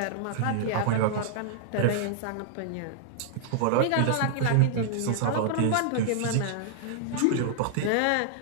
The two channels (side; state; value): both; different; correlation -0.01